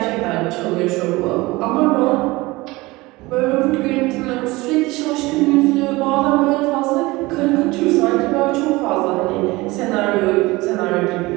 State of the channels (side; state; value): left; quieter; 21.5 dB